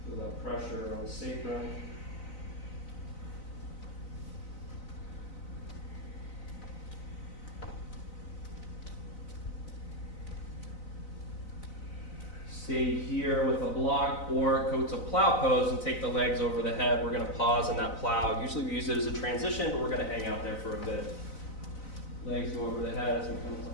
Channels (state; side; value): late; right; 4.0 ms